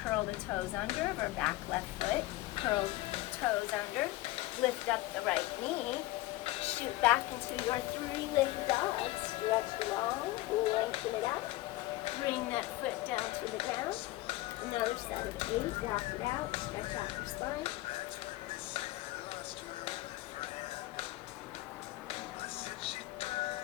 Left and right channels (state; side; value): quieter; right; 18.0 dB